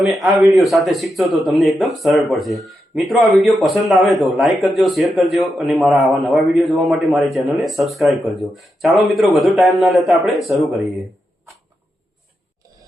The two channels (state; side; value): normal; both; correlation 0.86